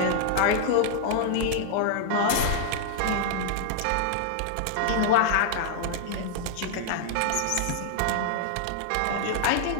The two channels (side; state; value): both; different; correlation -0.01